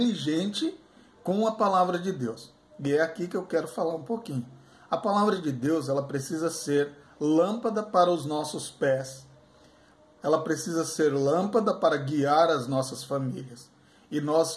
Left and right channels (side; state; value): both; identical; correlation 1.00